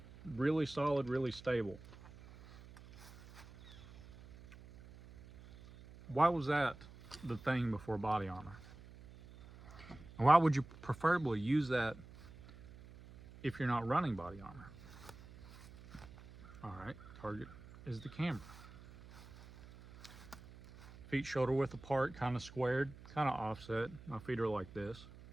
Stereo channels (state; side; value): noise; right; hum, 18 dB below the sound